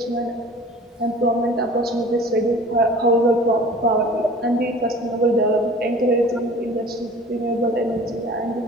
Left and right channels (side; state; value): both; normal; correlation 0.44